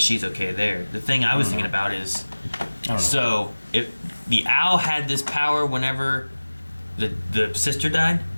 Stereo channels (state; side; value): inverted; both; correlation -1.00